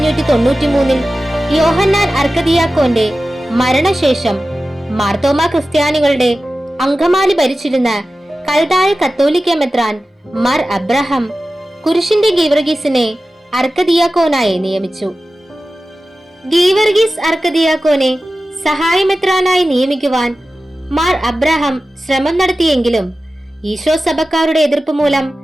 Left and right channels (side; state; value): both; normal; correlation 0.95